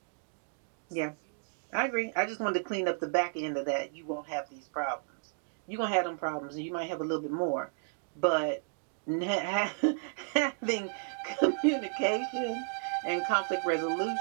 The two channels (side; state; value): left; silent; digital silence